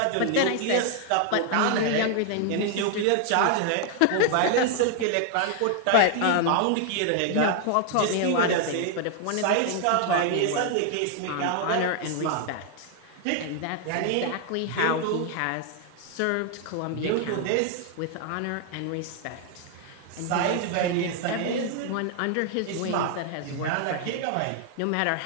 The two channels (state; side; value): different; both; correlation 0.00